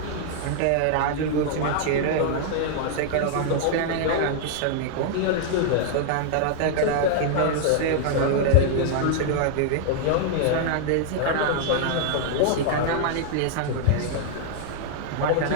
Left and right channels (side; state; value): both; different; correlation 0.00